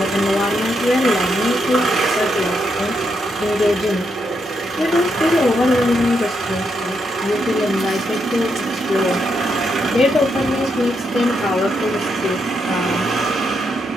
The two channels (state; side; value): normal; both; correlation 0.80